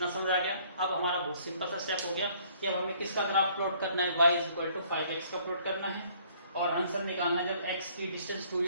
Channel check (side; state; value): both; inverted; correlation -0.60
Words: समझ आ गया। अब हमारा बहुत सिंपल सा स्टेप हो गया कि अब हमें किसका ग्राफ प्लॉट करना है, y is equal to 5x का प्लॉट करना है, और आंसर निकालना है। जब x की डिस्टेंस 2